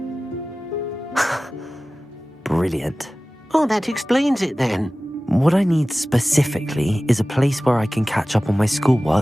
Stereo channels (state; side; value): normal; both; correlation 0.97